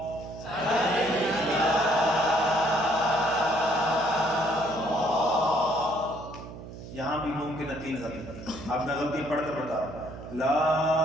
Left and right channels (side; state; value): right; noise; hum, 13 dB below the sound